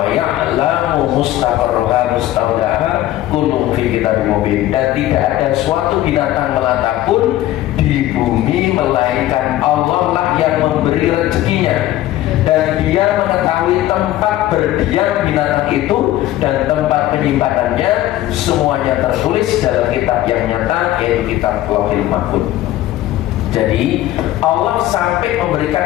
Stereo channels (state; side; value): quieter; right; 14.6 dB